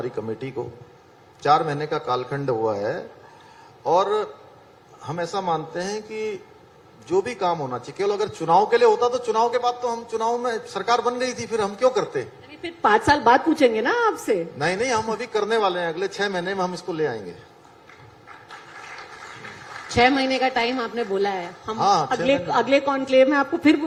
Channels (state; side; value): identical; both; correlation 1.00